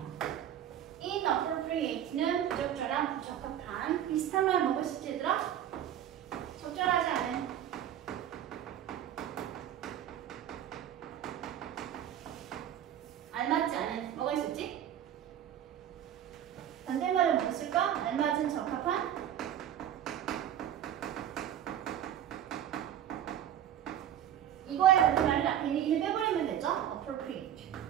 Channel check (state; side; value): quieter; left; 10.5 dB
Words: inappropriate는 부적절한, 부적합한. 비슷한 말 뭐가 있을지 얘들아? 적절하지 않은. 알맞지 않은. 뭐가 있었지? 반대말은 뭐가 있을까? 알맞은, 적합한. 이거에 반대말은 앞에 있는 이를 빼버리면 되죠? appropriate.